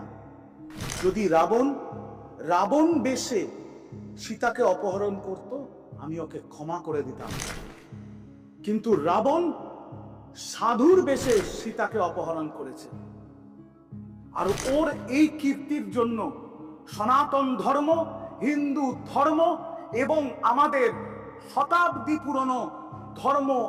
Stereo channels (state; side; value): identical; both; correlation 1.00